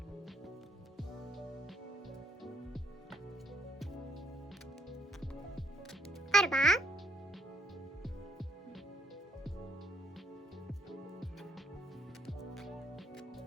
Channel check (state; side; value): normal; both; correlation 0.70